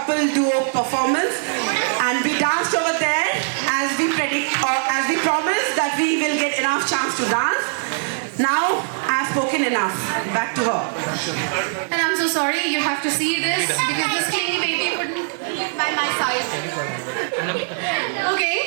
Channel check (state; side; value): silent; left; digital silence